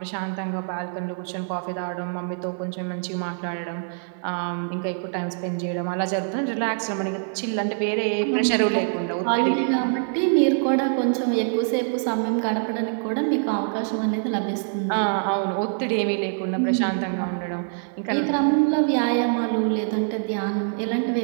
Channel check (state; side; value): silent; left; digital silence